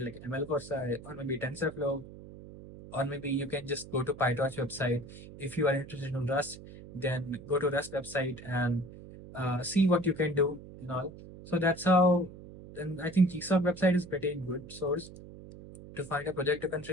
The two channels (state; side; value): noise; right; hum, 16 dB below the sound